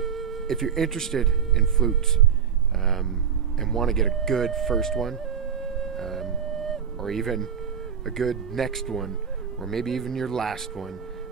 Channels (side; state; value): left; quieter; 7.6 dB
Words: if you're interested in flutes and want to get a good first one, or even a good next one, or maybe even your last one,